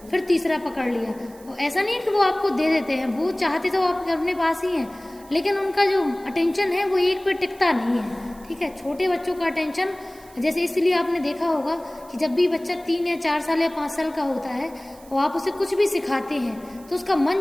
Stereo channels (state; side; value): noise; right; hiss, 24 dB below the sound